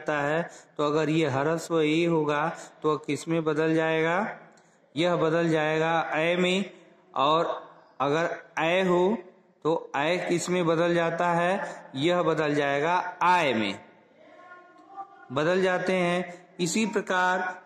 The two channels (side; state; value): both; identical; correlation 1.00